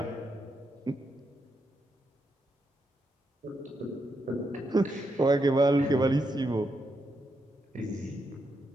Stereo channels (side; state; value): both; normal; correlation 0.82